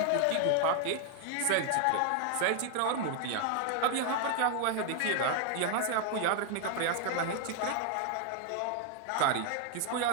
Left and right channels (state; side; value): different; both; correlation 0.00